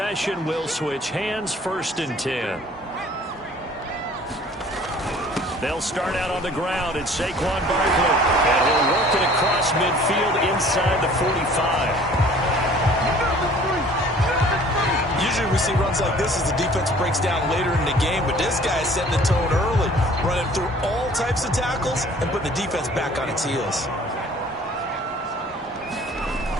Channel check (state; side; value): normal; both; correlation 0.51